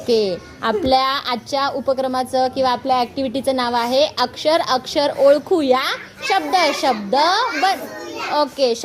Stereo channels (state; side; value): identical; both; correlation 1.00